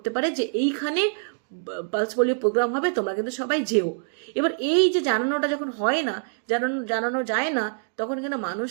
পারে যে এইখানে পালস পোলিও প্রোগ্রাম হবে, তোমরা কিন্তু সবাই যেও। এবার এই যে জানানোটা যখন হয় না, জানানো যায় না, তখন কিন্তু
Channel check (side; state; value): left; silent; digital silence